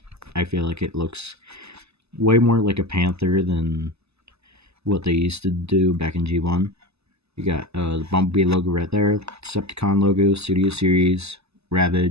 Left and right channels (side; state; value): left; late; 0.79 ms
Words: I feel like it looks way more like a Panther than what they used to do back in G1. You got the Bumblebee logo right there, Decepticon logo, Studio Series,